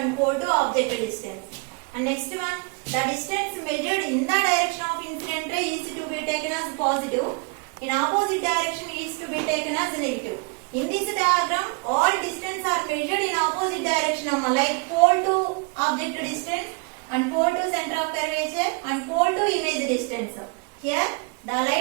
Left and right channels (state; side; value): quieter; left; 33.1 dB